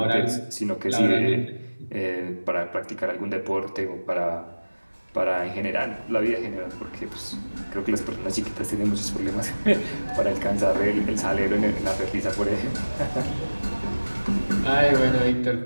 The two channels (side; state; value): both; inverted; correlation -1.00